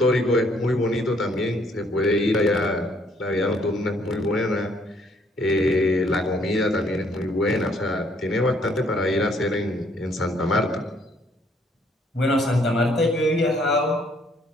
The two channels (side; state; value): both; normal; correlation 0.65